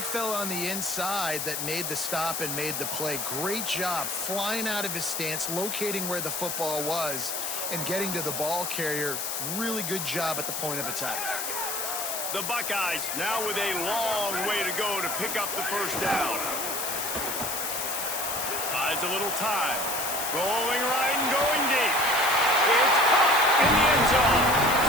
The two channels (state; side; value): noise; left; hiss, 3 dB below the sound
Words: fella on the inside that made the stop and made the play. Great job flying out of his stance, locating where the football was, and getting to the ball carrier. Really good job at the point of attack. The Buckeyes now with a long way to go to pick up the first down. Buys a little time. Rolling right and going deep. It's caught in the end zone.